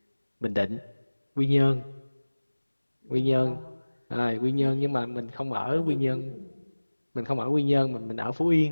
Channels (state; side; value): inverted; both; correlation -1.00